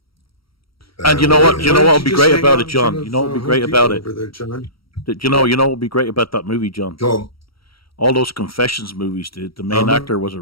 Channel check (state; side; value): late; right; 0.75 ms